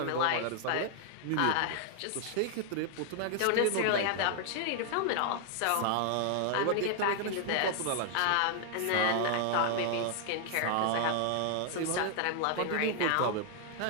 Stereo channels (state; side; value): different; both; correlation 0.00